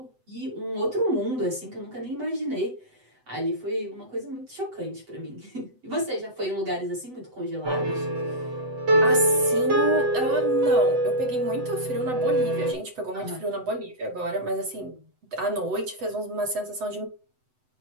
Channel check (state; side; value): late; left; 7.9 ms